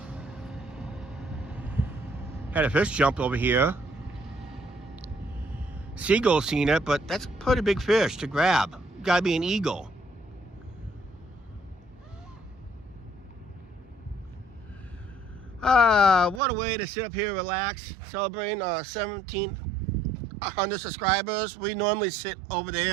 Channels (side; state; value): left; drops out; at 16.4 s